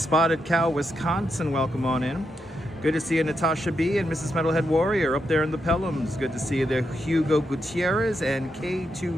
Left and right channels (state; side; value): normal; both; correlation 0.83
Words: Cow, Wisconsin, welcome on in. Good to see you, Natasha B. and Mrs. Metalhead Warrior up there in the Pelhams. Good to see you there, Hugo Gutierrez and